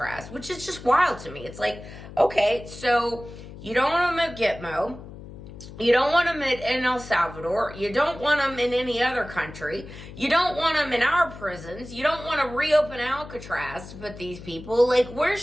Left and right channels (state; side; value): noise; left; hum, 14 dB below the sound